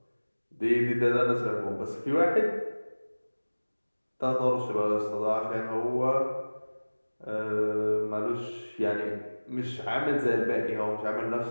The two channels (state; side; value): inverted; both; correlation -1.00